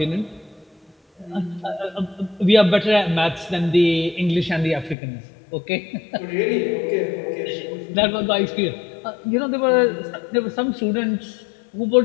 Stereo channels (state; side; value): drops out; right; at 5.0 s